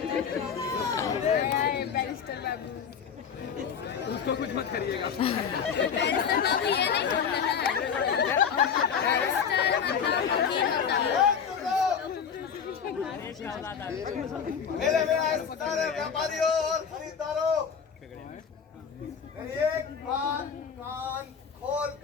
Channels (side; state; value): right; quieter; 7.0 dB